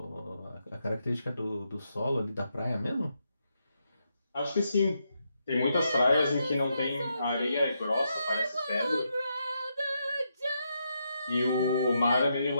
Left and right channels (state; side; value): inverted; both; correlation -0.81